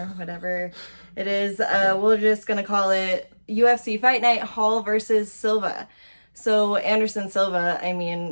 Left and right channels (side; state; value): both; inverted; correlation -1.00